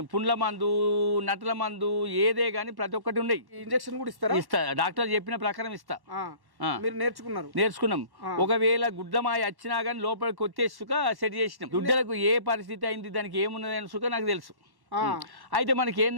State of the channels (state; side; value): late; left; 1.1 ms